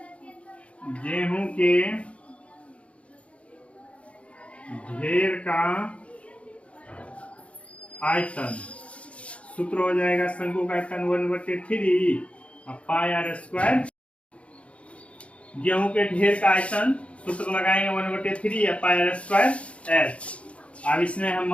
गेहूं के ढेर का आयतन सूत्र हो जाएगा शंकु का आयतन 1/3 पाई r स्क्वायर। गेहूं के ढेर का आयतन सूत्र लगाएंगे 1/3 पाई r स्क्वायर h। अब इसमें हम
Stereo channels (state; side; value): late; right; 0.062 ms